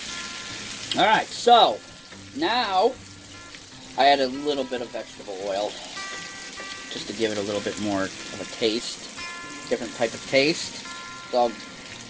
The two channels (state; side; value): identical; both; correlation 1.00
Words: Alright, so now I add a little bit of vegetable oil just to give it a little bit more of a taste, different type of taste. It's all